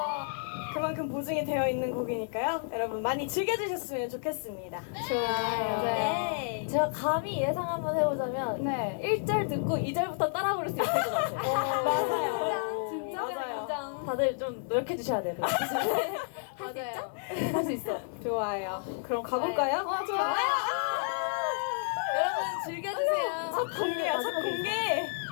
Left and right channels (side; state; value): right; silent; digital silence